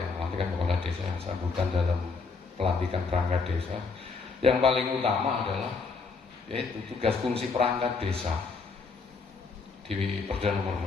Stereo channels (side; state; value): right; quieter; 4.6 dB